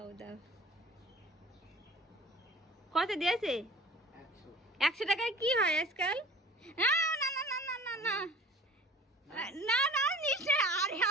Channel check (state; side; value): normal; both; correlation 0.45